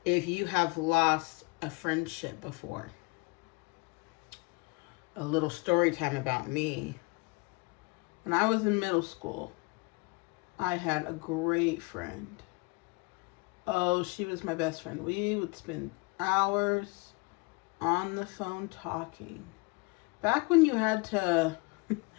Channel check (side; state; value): right; quieter; 28.0 dB